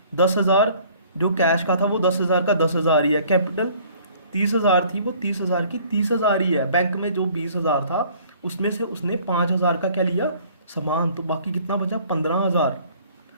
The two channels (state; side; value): inverted; both; correlation -0.55